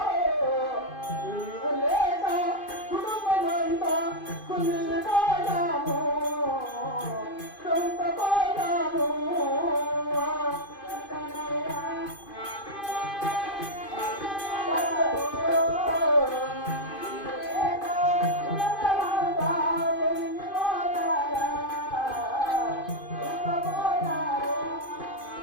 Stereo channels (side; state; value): right; late; 2.5 ms